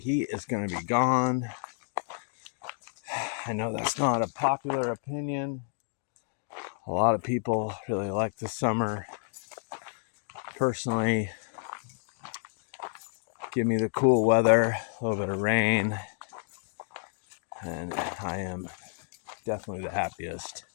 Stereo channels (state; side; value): silent; right; digital silence